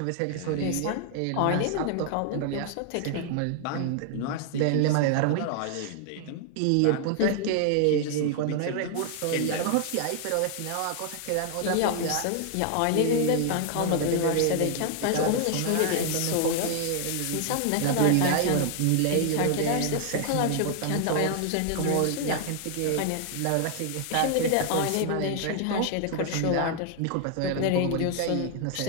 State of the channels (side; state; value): both; different; correlation 0.00